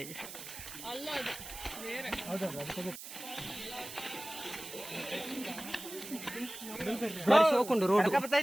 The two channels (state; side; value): noise; right; hiss, 11 dB below the sound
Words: ಬಾರಿ ಸೋಕೊಂಡು ರೋಡ್